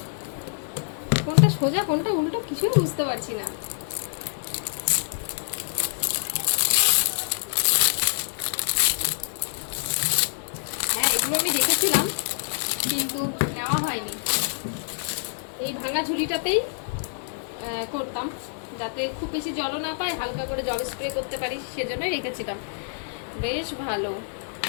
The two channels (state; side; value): silent; right; digital silence